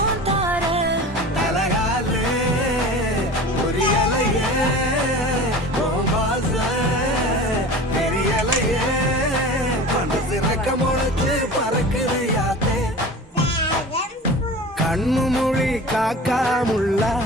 கண்ணு மொழி காக்கா முள்ளா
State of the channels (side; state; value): both; normal; correlation 0.36